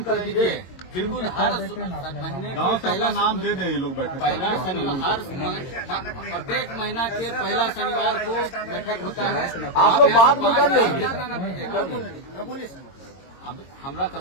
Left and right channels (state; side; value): late; right; 22 ms